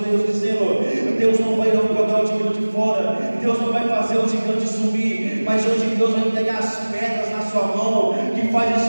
dizendo: Deus não vai jogar o gigante fora. Deus não vai fazer o gigante subir. Mas hoje Deus vai entregar as pedras na sua mão que faz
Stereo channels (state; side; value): inverted; both; correlation -1.00